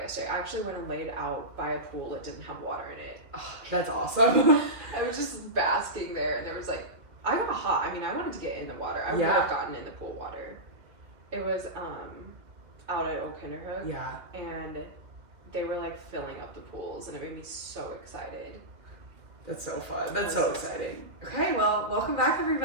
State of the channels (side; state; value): left; late; 2.3 ms